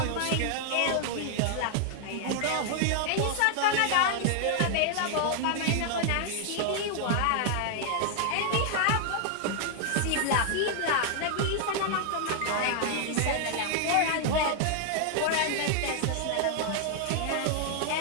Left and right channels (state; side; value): different; both; correlation 0.00